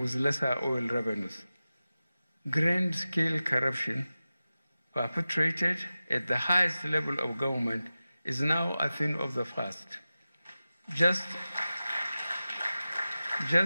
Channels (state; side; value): inverted; both; correlation -0.95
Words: with lesser oil revenues. Grand-scale corruption perpetrated at the highest level of government is now a thing of the past. Just